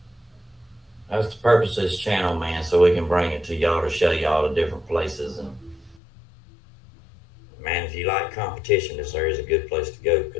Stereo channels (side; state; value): right; drops out; at 6.0 s